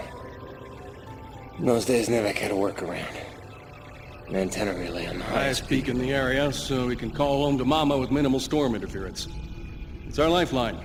In those days, Nevek had a workaround. An antenna relay on the Highest peak in the area, so we can call home to Mama with minimal storm interference. It's our lifeline.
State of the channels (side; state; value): both; identical; correlation 1.00